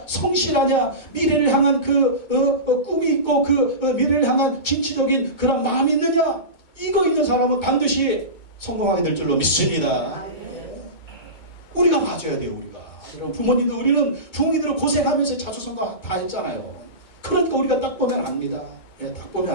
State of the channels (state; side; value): late; right; 2.2 ms